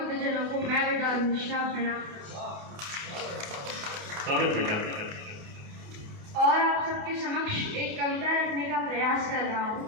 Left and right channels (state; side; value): late; left; 28 ms